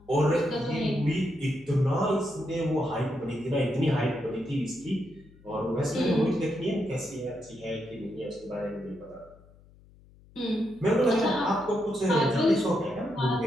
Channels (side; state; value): left; noise; hum, 26 dB below the sound